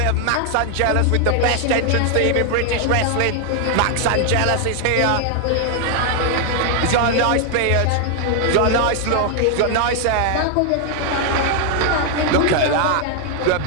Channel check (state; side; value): different; both; correlation 0.00